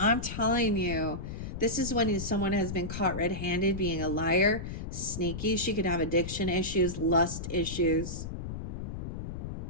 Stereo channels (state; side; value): noise; left; rumble, 6 dB below the sound